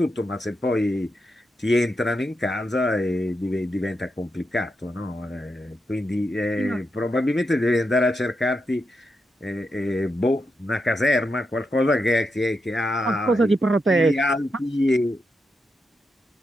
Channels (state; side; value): normal; both; correlation 0.85